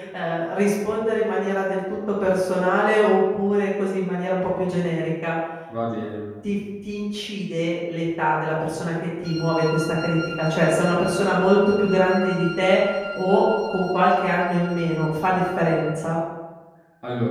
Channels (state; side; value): identical; both; correlation 1.00